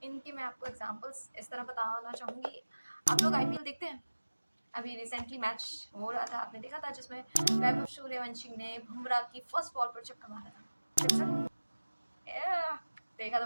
इनके मैं आपको एग्जांपल्स इस तरह बताना चाहूँगी। आप लोग आईपीएल देखते हैं? अभी रिसेंटली मैच हो रहा था, आपने देखा था, जिसमें वैभव सूर्यवंशी ने बुमराह की फर्स्ट बॉल पर छक्का मारा था। सिक्सर? देखा तो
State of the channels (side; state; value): both; inverted; correlation -1.00